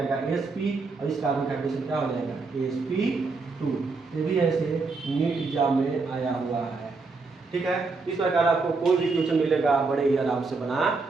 SP, और इस कार्बन का हाइड्रेशन क्या हो जाएगा SP2। ये भी ऐसे नीट एग्जाम में आया हुआ है, ठीक है। इस प्रकार आपको कोई भी क्वेश्चन मिलेगा बड़े ही आराम से बना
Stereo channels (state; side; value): quieter; left; 4.0 dB